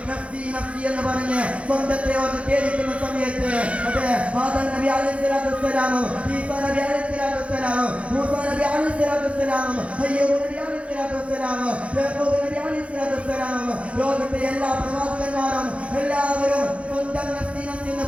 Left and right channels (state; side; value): late; left; 0.062 ms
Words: നഫ്സി നഫ്സി എന്ന് പറഞ്ഞ് സ്വന്തത്തെ ഓർത്ത് കേൾക്കുന്ന സമയത്ത്, അതെ, ആദം നബി അലൈഹിസ്സലാത്തു വസ്സലാമും ഈസാ നബി അലൈഹിസ്സലാത്തു വസ്സലാമും മൂസാ നബി അലൈഹിസ്സലാത്തു വസ്സലാമും അയ്യൂബ് നബി അലൈഹിസ്സലാത്തു വസ്സലാമും യാക്കൂബ് നബി അലൈഹിസ്സലാത്തു വസ്സലാമും ലോകത്തെ എല്ലാ പ്രവാചകന്മാരും എല്ലാവരും സ്വന്തം നഫ്സി നഫ്സി എന്ന്